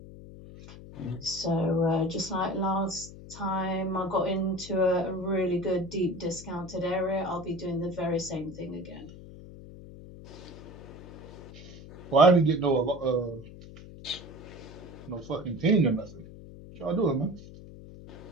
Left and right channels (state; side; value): noise; left; hum, 16 dB below the sound